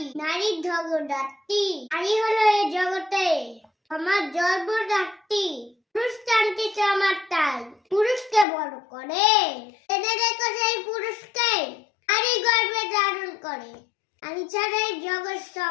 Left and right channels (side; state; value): right; drops out; at 8.5 s